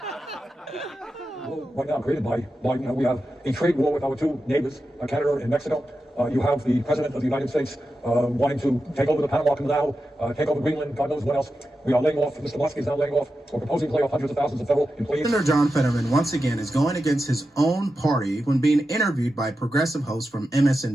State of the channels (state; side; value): normal; both; correlation 0.90